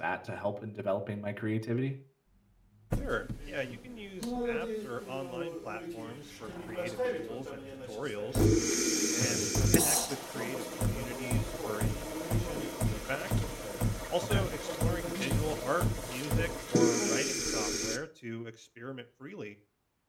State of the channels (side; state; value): both; identical; correlation 1.00